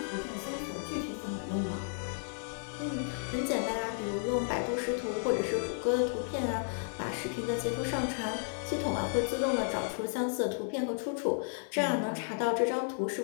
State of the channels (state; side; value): silent; right; 56 dB below the other